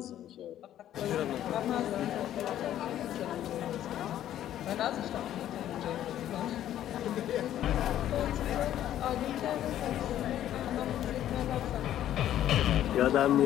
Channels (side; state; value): right; quieter; 11.8 dB